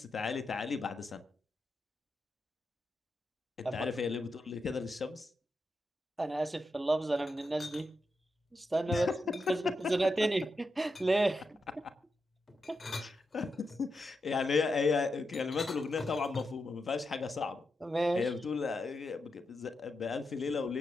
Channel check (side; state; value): both; normal; correlation 0.86